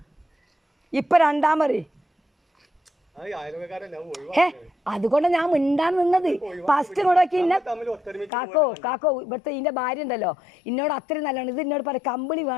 ഇപ്പം രണ്ടാമത് അതുകൊണ്ട് ഞാൻ മിണ്ടാൻ നിന്നത് ഫസ്റ്റ് ഇങ്ങോട്ടൊക്കെ ഇന്നെ കാക്കോ ഇവിടുത്തെ ഇതിൻ്റെ ഭാര്യ ഉണ്ടല്ലോ എന്നോട് അത്രയും നല്ലതാണ് ഇത് എന്നോട് പറയും കമ്പിളി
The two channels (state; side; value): drops out; right; at 8.3 s